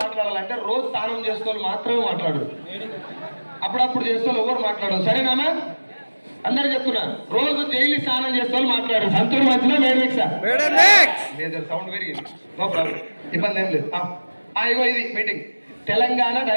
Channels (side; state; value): both; inverted; correlation -1.00